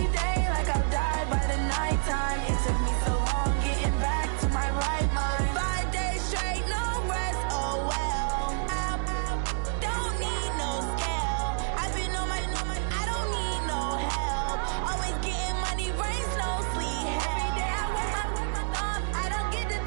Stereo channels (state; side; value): silent; left; 59 dB below the other